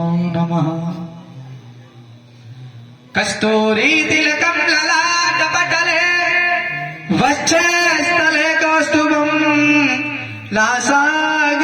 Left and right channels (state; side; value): identical; both; correlation 1.00